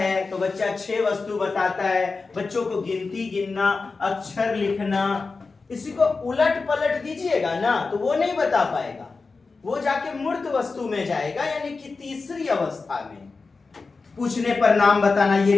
तो बच्चा 6 वस्तु बताता है। बच्चों को गिनती गिनना, अक्षर लिखना, इसी को उलट पलट दीजिएगा ना तो वो नहीं बता पाएगा, वो जाके मूर्त वस्तु में जाएगा, यानी कि तीसरी अवस्था में। पूछने पर नाम बताना,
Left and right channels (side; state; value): right; quieter; 4.2 dB